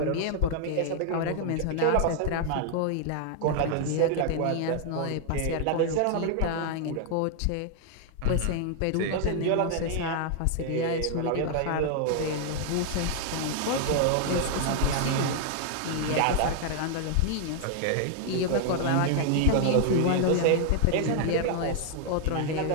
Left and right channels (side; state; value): both; different; correlation 0.00